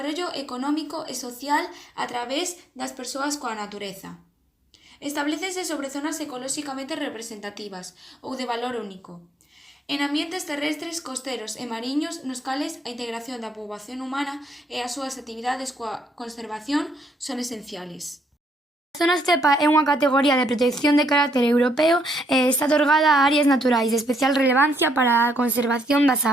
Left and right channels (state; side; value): normal; both; correlation 0.73